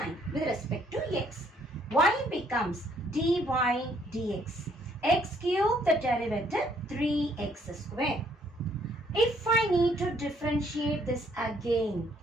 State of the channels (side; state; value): both; normal; correlation 0.66